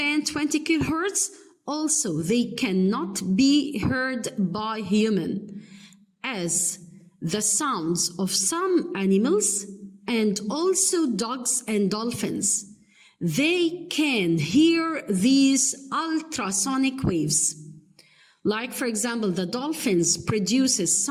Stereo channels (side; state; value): both; identical; correlation 1.00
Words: 20 kilohertz, also they cannot be heard by human, as the sounds of some animals and also dogs and dolphins. They can hear these ultrasonic waves. Like, for example, the dolphins produces